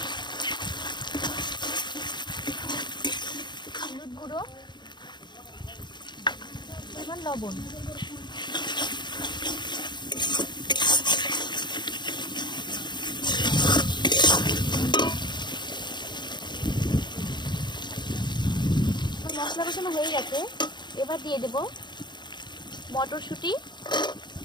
হলুদ গুঁড়ো, এবার লবণ। মশলা কষানো হয়ে গেছে। এবার দিয়ে দেব মটরশুঁটি,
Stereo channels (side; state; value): right; late; 0.22 ms